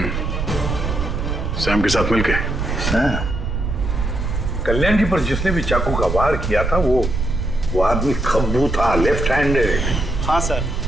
सैम के साथ मिलके। कल्याण की पर जिसने भी चाकू का वार किया था वो आदमी खब्बू था, लेफ्ट हैंडेड। हाँ सर,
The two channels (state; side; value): noise; right; rumble, 2 dB below the sound